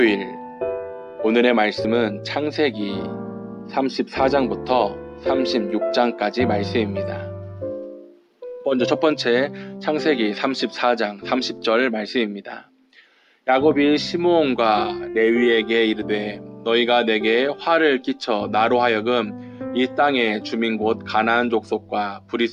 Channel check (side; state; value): both; identical; correlation 1.00